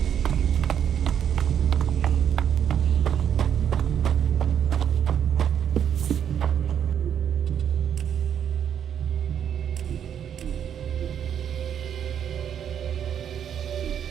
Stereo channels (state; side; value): quieter; left; 8.9 dB